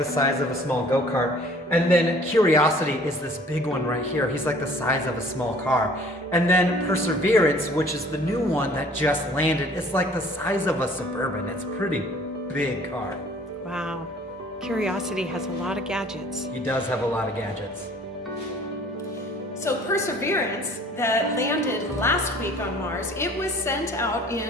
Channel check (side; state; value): both; normal; correlation 0.53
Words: size of a small go-kart. And then Curiosity is this big one right here. He's like the size of a small car. And then Perseverance, which is the new one that just landed, it's like the size of a Suburban. It's a pretty big car. Wow. Curiosity has a lot of gadgets. He does have a lot of gadgets. So Perseverance, that landed last week on Mars, it was sent out